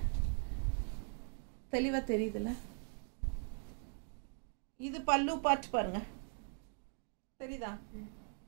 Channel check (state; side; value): silent; left; 51 dB below the other